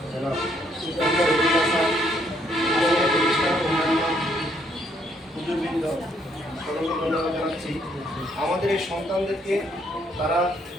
জানাচ্ছি আমাদের এই সন্তানদেরকে তারা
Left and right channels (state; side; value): normal; both; correlation 0.70